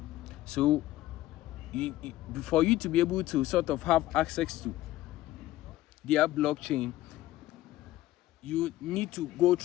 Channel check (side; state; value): right; quieter; 15.5 dB